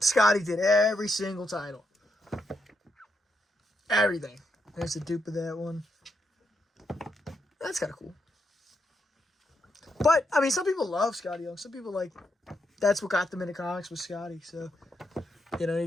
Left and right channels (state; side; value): normal; both; correlation 0.81